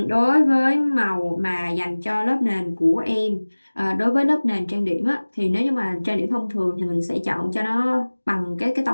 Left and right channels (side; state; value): both; inverted; correlation -1.00